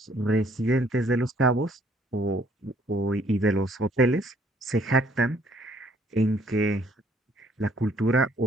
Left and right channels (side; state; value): both; normal; correlation 0.63